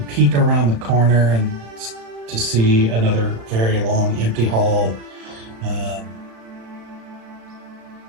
peek around the corner and to see another very long empty hall.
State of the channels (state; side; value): late; left; 36 ms